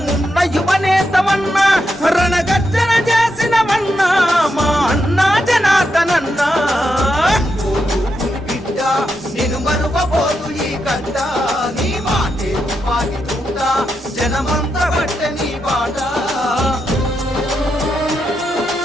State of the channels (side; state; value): both; normal; correlation 0.84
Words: యువనేతమన్నా, రణగర్జన చేసినవన్నా మా అన్నా జనార్దనన్నా. బిడ్డ నేను మరువబోదు ఈ గడ్డ, నీ మాటే తుపాకి తూట, జనమంత బట్టె నీ బాట.